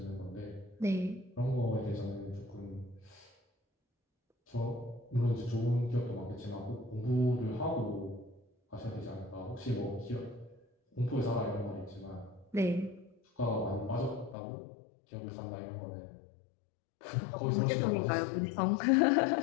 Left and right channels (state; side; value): drops out; right; at 14.4 s